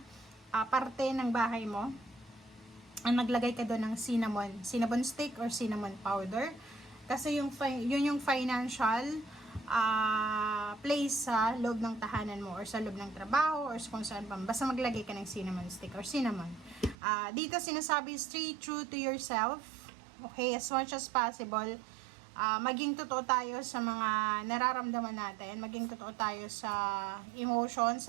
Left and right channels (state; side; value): drops out; left; at 16.9 s